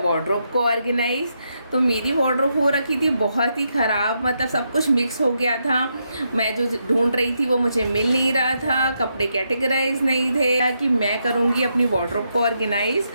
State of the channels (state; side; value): inverted; both; correlation -0.81